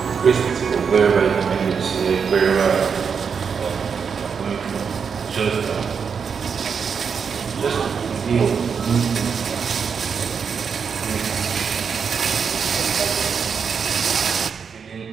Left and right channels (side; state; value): left; quieter; 6.3 dB